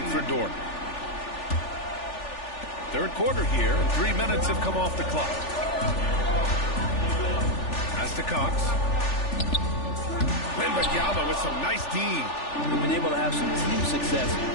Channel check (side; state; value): right; late; 3.4 ms